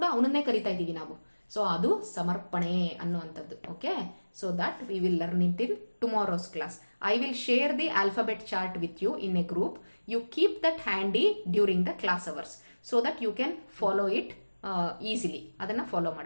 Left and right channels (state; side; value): inverted; both; correlation -1.00